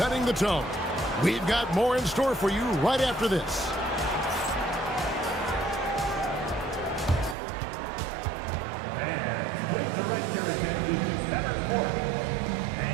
the tone. We've got more in store for you right after this. Fans, please direct your attention to center court.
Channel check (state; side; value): drops out; left; at 7.4 s